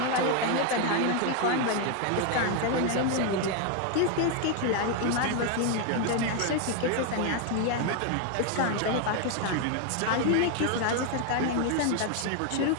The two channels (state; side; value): different; both; correlation 0.01